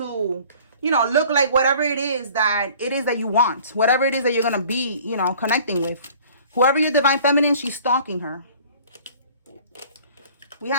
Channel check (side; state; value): both; inverted; correlation -0.49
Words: you know, look like whatever it is that you want. Whatever it is that you're going to be, you know, connecting with. Whoever your divine feminine, she's stalking her. We